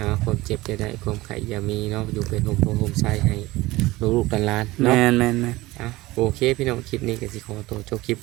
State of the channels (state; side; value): quieter; left; 19.3 dB